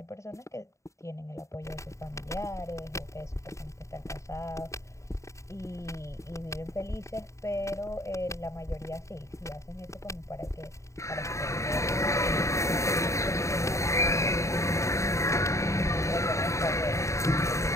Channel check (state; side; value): late; right; 0.14 ms